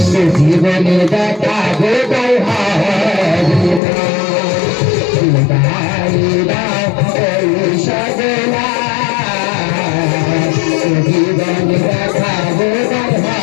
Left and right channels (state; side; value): drops out; right; at 3.8 s